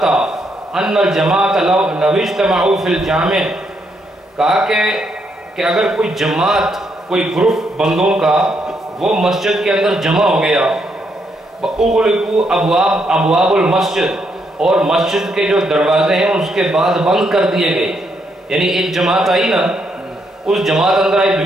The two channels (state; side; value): normal; both; correlation 0.76